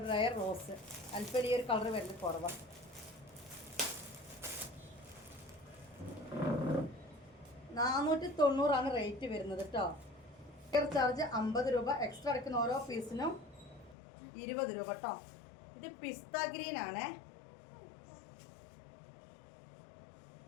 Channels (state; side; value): drops out; right; at 14.0 s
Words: റയർ റോസ്. അല്പം ഈ ഒരു കളർ വരുന്നത് കുറവാണ്. 490 റേറ്റ് വരുന്നത് കേട്ടോ. കൊറിയർ ചാർജ് 50 രൂപ, എക്സ്ട്രാ എടുക്കുന്ന ഓരോ പീസിനും 20 രൂപ കേട്ടോ. ഇത് പിസ്ത ഗ്രീൻ ആണേ.